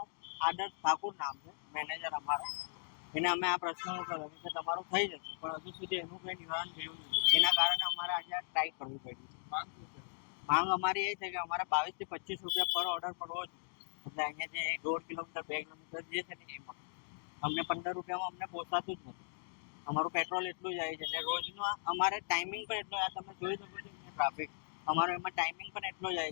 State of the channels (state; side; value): silent; right; digital silence